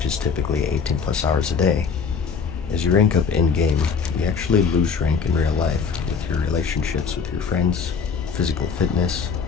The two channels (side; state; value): right; quieter; 5.7 dB